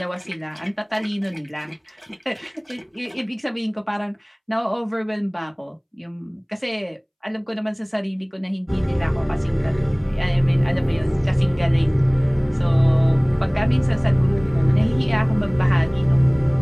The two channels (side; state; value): both; identical; correlation 1.00